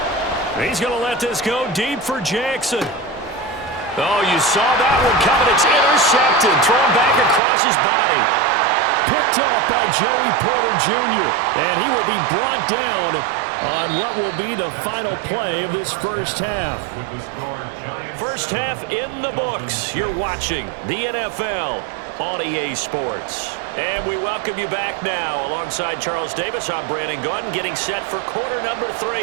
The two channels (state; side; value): drops out; left; at 7.4 s